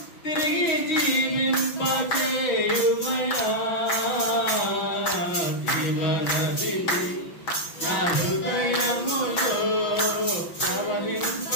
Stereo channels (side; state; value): right; late; 5.8 ms